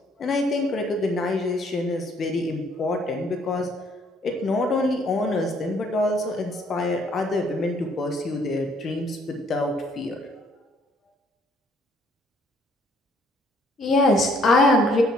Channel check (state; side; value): normal; both; correlation 0.64